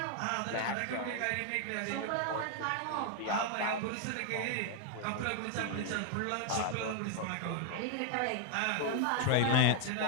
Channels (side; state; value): both; different; correlation 0.00